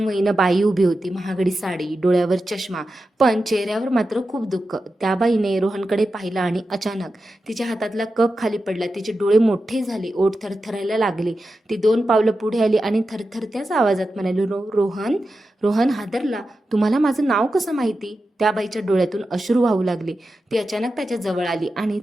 बाई उभी होती. महागडी साडी, डोळ्यावर चष्मा, पण चेहऱ्यावर मात्र खूप दुःख. त्या बाईने रोहनकडे पाहिलं आणि अचानक तिच्या हातातला कप खाली पडला. तिचे डोळे मोठे झाले, ओठ थरथरायला लागले. ती 2 पावलं पुढे आली आणि थरथरत्याच आवाजात म्हणाली, रोहन. रोहन हादरला. तुम्हाला माझं नाव कसं माहिती? त्या बाईच्या डोळ्यातून अश्रू वाहू लागले. ती अचानक त्याच्या जवळ आली आणि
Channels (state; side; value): normal; both; correlation 0.91